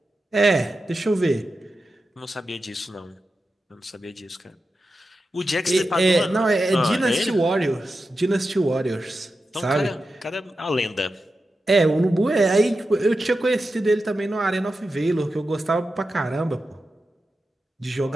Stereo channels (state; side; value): normal; both; correlation 0.91